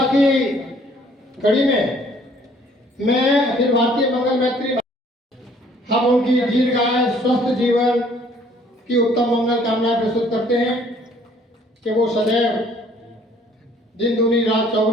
की कड़ी में मैं अखिल भारतीय मंगल मैत्री हम उनकी दीर्घायु स्वस्थ जीवन की उत्तम मंगल कामनाएं प्रस्तुत करते हैं कि वो सदैव दिन दूनी रात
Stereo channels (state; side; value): normal; both; correlation 0.59